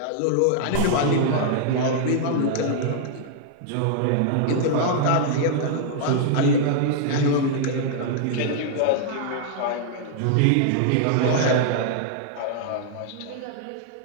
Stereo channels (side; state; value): both; different; correlation -0.01